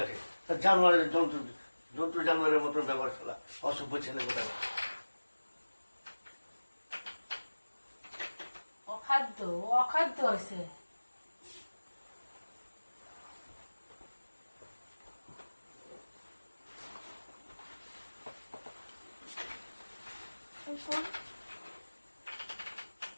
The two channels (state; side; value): inverted; both; correlation -1.00